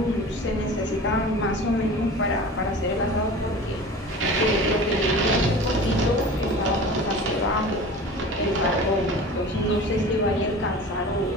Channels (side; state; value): both; normal; correlation 0.38